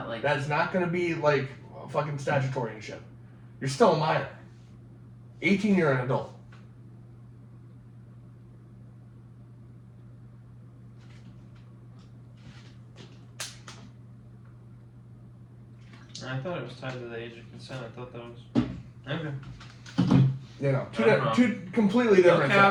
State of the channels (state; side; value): identical; both; correlation 1.00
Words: like... That's not going to be like fucking statutory and shit. You're still a minor. 18, you're an adult. I thought it was tied to the age of consent. I thought that was... Okay. You know, two completely different